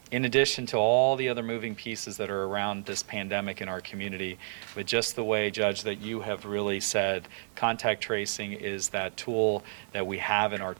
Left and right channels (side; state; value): left; silent; digital silence